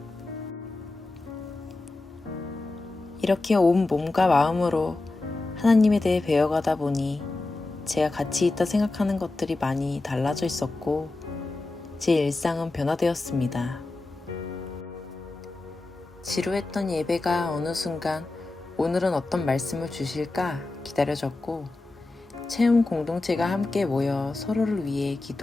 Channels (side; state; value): right; quieter; 3.1 dB